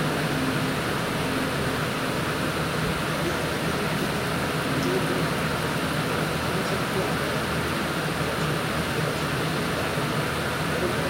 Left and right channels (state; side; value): identical; both; correlation 1.00